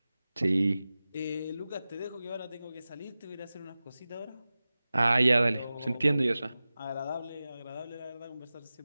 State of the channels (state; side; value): inverted; both; correlation -0.96